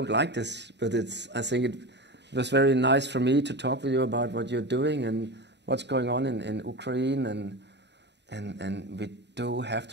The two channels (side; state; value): left; late; 0.50 ms